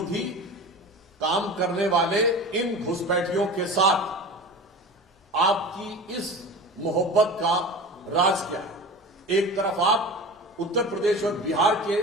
काम करने वाले इन घुसपैठियों के साथ आपकी इस मोहब्बत का राज क्या है? एक तरफ आप उत्तर प्रदेश और बिहार के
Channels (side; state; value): both; normal; correlation 0.33